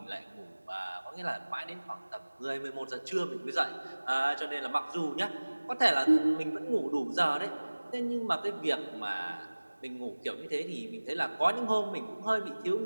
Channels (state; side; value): inverted; both; correlation -1.00